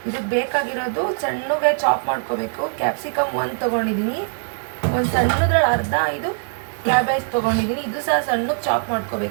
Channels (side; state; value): left; silent; digital silence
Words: ಇದಕ್ಕೆ ಬೇಕಾಗಿರೋದು ಸಣ್ಣಗೆ ಚಾಪ್ ಮಾಡ್ಕೋಬೇಕು. ಕ್ಯಾಪ್ಸಿಕಮ್ ಒಂದು ತೊಗೊಂಡಿದ್ದೀನಿ, ಒಂದು ಸಣ್ಣದ್ರಲ್ಲಿ ಅರ್ಧ ಇದು ಕ್ಯಾಬೇಜ್ ತೊಗೊಂಡಿದ್ದೀನಿ, ಇದು ಸಹ ಸಣ್ಣಗೆ ಚಾಪ್